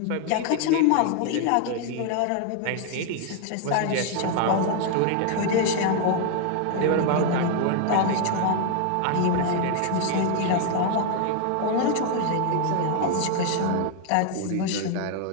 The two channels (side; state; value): both; different; correlation 0.00